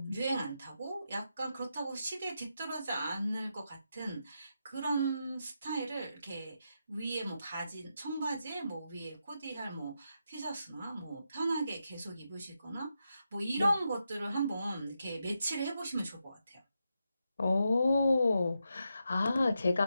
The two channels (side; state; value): both; inverted; correlation -0.85